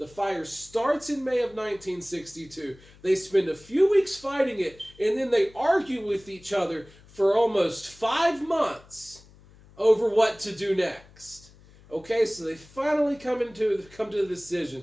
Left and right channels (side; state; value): left; noise; hum, 25 dB below the sound